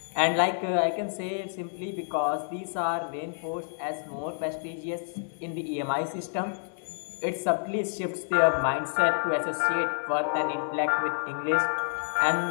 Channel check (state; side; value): silent; right; digital silence